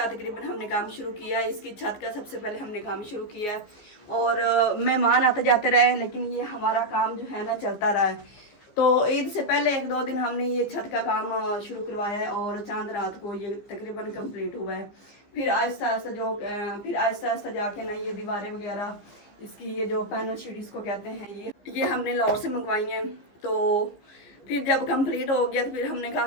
तकरीबन हमने काम शुरू किया है। इसकी छत का सबसे पहले हमने काम शुरू किया है और मेहमान आते जाते रहे, लेकिन ये हमारा काम जो है ना चलता रहा है। तो ईद से पहले 1-2 दिन हमने ये छत का काम शुरू करवाया है और चांद रात को ये तकरीबन कंप्लीट हुआ है। फिर आहिस्ता आहिस्ता जाके ना ये दीवारें वगैरह, इसकी ये जो पैनल शीट इसको कहते हैं, ये हमने लाहौर से मंगवाई हैं। तो फिर जब कंप्लीट हो गया तो फिर हमने कहा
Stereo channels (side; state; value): right; late; 15 ms